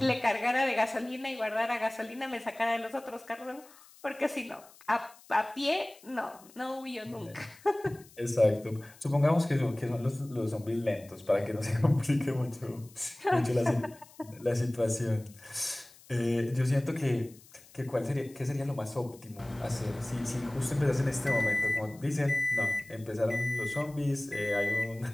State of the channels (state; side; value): noise; left; hiss, 24 dB below the sound